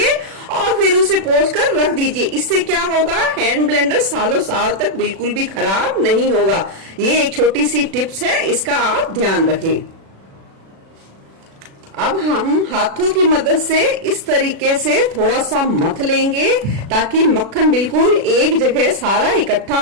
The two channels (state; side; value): late; left; 36 ms